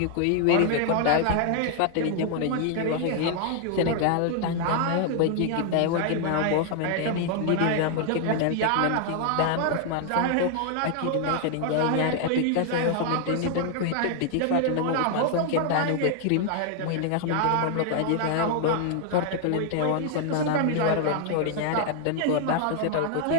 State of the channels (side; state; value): both; different; correlation 0.00